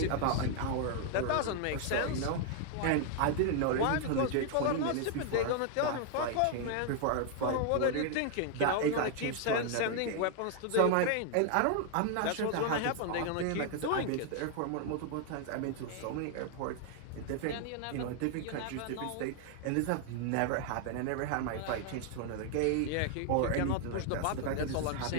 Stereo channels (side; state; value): both; different; correlation 0.00